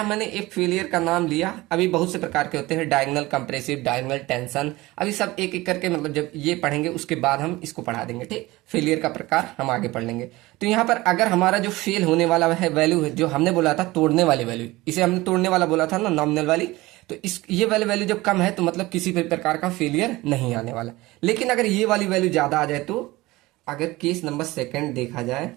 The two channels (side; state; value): left; quieter; 19.8 dB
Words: मैंने एक फेलियर का नाम लिया, अभी बहुत से प्रकार के होते हैं, डायगोनल कंप्रेसिव, डायगोनल टेंशन, अभी सब एक एक करके, मतलब जब ये पढ़ेंगे उसके बाद हम इसको पढ़ा देंगे, ठीक। फेलियर का प्रकार हम आगे पढ़ लेंगे। तो यहाँ पर अगर हमारा जो फेल होने वाला है वैल्यू है, जो हमने बोला था तोड़ने वाली वैल्यू, इसे हमने तोड़ने वाला बोला था ना, नॉमिनल वाली, तो इस ये वाली वैल्यू जब कम है तो मतलब किसी भी प्रकार का फेलियर नहीं आने वाला। लेकिन अगर ये वाली वैल्यू ज्यादा आ जाए, तो अगर केस नंबर सेकेंड देखा जाए